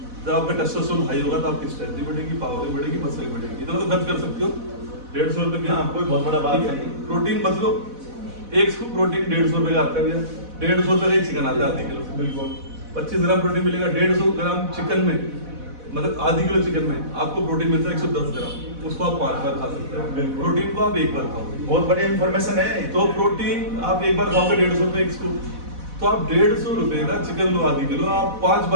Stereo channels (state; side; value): late; left; 4.1 ms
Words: जब आपका टेस्टोस्टेरोन हाई होगा तो आपकी स्ट्रेंथ भी बढ़ेगी, पावर भी बढ़ेगी, मसल भी बढ़ेगी। इतना तो खर्च कर सकते हो 150 रुपये में। हाँ, कोई बहुत बड़ा बात नहीं। प्रोटीन मत लो, एक स्कूप प्रोटीन 150 रुपये का आता है भैया। 150 रुपये का एक चिकन आता है आधे किलो, बिल्कुल। 25 ग्राम प्रोटीन मिलेगा 150 ग्राम चिकन में, मतलब आधी किलो चिकन में आपको प्रोटीन मिलता है 110 ग्राम। उसको आप 5 बार खा सकते हो। प्रोटीन को आप 1 बार खाओ, बहुत बढ़िया इन्फॉर्मेशन है। तो प्रोटीन आप 1 बार खाओगे 150 रुपये एक स्कूप, तो आप 150 रुपये का चिकन लो आधी किलो, आप 5